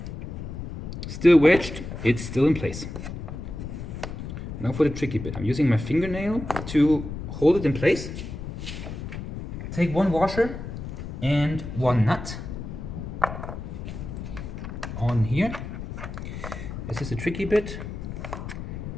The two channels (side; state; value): left; noise; rumble, 8 dB below the sound